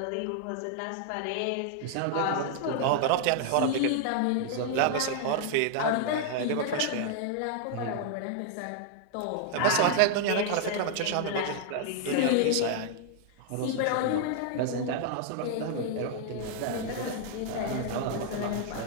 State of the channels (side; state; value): both; different; correlation 0.00